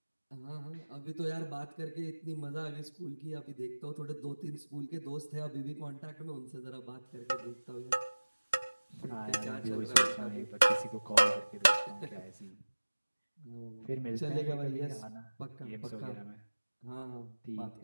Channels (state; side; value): inverted; both; correlation -1.00